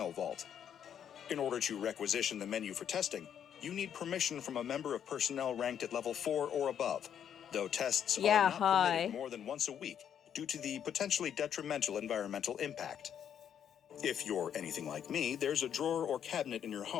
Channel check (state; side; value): quieter; right; 9.0 dB